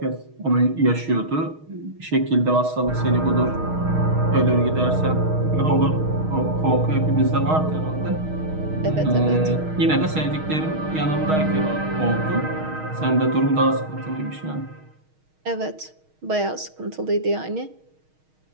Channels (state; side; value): late; left; 6.4 ms